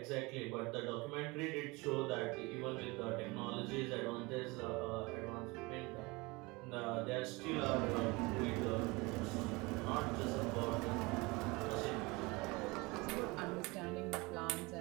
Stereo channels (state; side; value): quieter; left; 24.6 dB